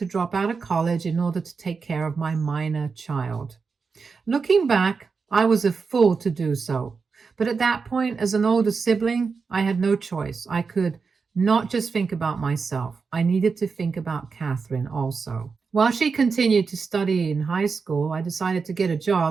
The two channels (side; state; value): left; quieter; 5.0 dB